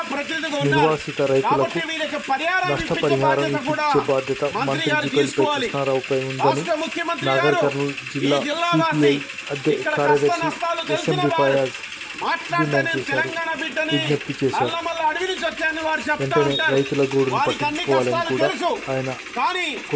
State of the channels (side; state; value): both; identical; correlation 1.00